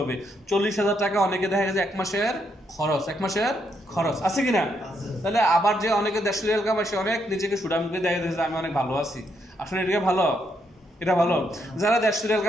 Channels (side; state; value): both; normal; correlation 0.77